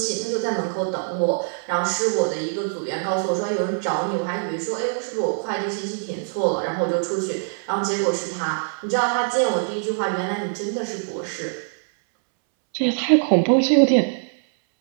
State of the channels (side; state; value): left; silent; 63 dB below the other